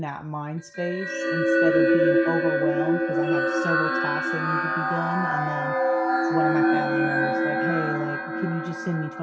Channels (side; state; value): both; identical; correlation 1.00